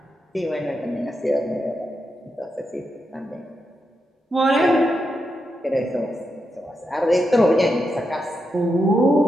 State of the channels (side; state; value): both; normal; correlation 0.85